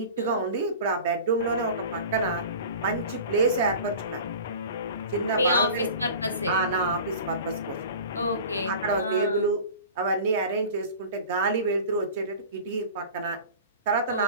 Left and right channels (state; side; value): inverted; both; correlation -0.38